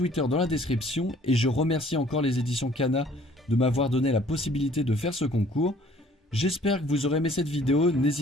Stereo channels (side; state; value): both; normal; correlation 0.56